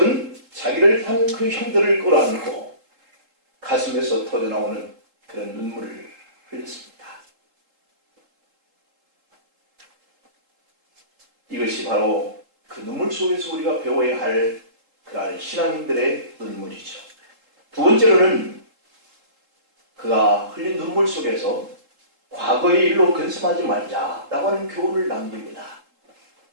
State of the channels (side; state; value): left; late; 3.7 ms